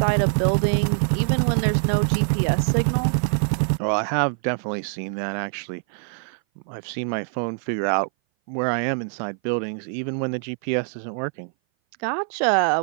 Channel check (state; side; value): silent; left; 58 dB below the other